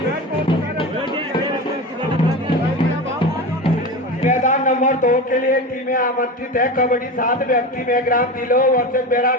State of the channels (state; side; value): normal; both; correlation 0.26